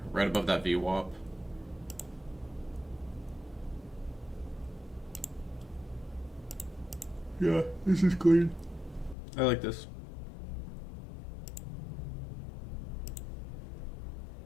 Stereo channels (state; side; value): drops out; right; at 9.2 s